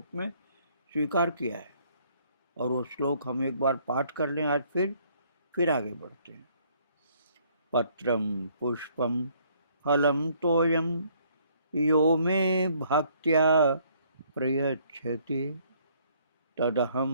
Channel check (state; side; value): inverted; both; correlation -0.64